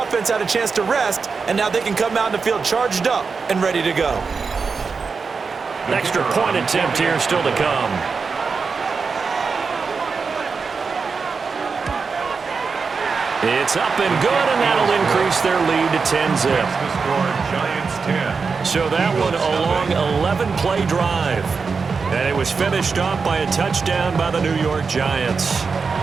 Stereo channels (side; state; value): left; quieter; 5.0 dB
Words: had a chance to rest, and now they can come out in the field charged up and ready to go. Extra point attempt here still to come. It's up and good, and that'll increase their lead to 10-zip. So that one a long 11-play drive. And it was finished off by a touchdown by the New York Giants.